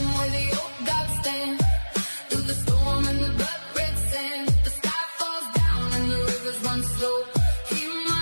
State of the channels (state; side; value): inverted; both; correlation -1.00